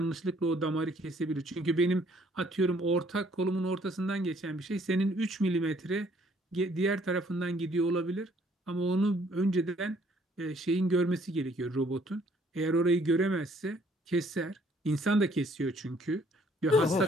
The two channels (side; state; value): both; normal; correlation 0.63